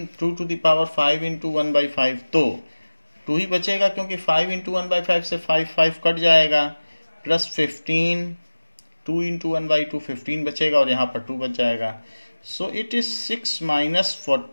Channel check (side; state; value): both; inverted; correlation -1.00